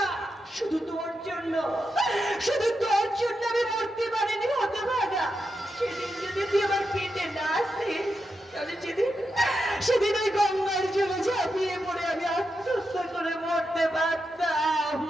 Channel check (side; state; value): both; normal; correlation 0.86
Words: শুধু তোর জন্য, শুধু তোর জন্য আমি মরতে পারিনি হতভাগা। সেদিন যদি তুই আমার পেটে না আসতিস, তাহলে সেদিন ওই গঙ্গার জলে ঝাঁপিয়ে পড়ে আমি আত্মহত্যা করে মরতে পারতাম।